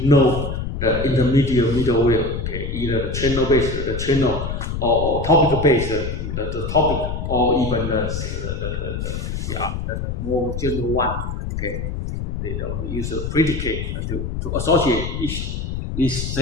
know the intermediate middleware. Okay, either the channel-based, the channel, or topic-based, the topic, or even the more general one. Okay, they don't use a predicate to associate this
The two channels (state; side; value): noise; left; rumble, 4 dB below the sound